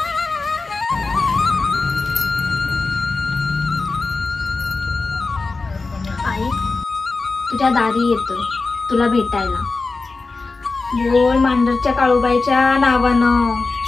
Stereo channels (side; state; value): right; quieter; 3.9 dB